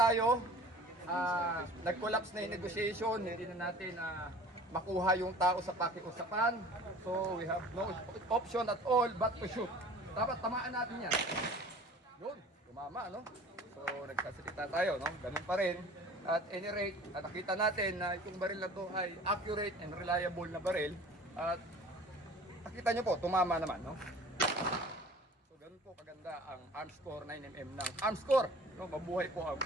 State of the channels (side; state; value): both; normal; correlation 0.45